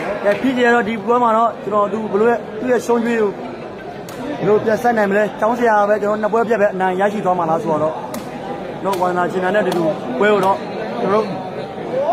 ျာဖြစ်ကြတော့ဒီပွဲမှာတော့ကျွန်တော်သူဘလို့သူ့ရဲ့ရှုံးကျွေးကိုဘလို့ပြန်ဆက်နိုင်မလဲကျောင်းဆရာပဲကျွန်တော်နှစ်ပွဲပြတ်ပဲအနိုင်ရရှိသွားမှာလားဆိုတော့တော့ဝါနာချင်းနဲ့တူတူပွဲကိုတော့ကျွန်တော်တို့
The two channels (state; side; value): identical; both; correlation 1.00